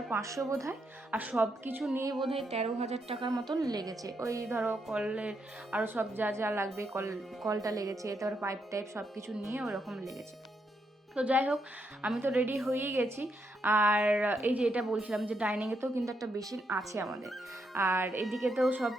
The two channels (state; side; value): normal; both; correlation 0.79